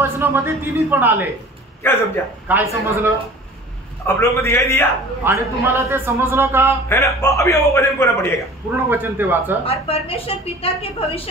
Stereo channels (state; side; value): normal; both; correlation 0.44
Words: तिन्ही पण आले। क्या समझा? काय समजलं? आप लोगों को दिखाई दिया आणि तुम्हाला ते समजलं का? है ना। अभी वो वचन पूरा पढ़िएगा, पूर्ण वचन ते वाचा। और परमेश्वर पिता के